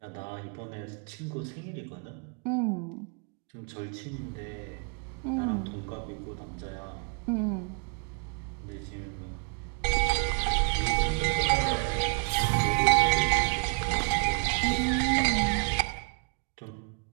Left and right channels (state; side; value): quieter; left; 38.4 dB